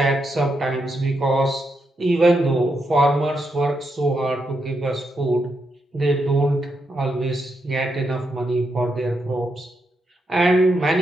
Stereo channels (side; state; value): both; normal; correlation 0.82